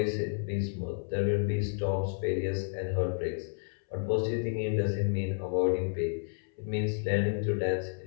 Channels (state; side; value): silent; right; 57 dB below the other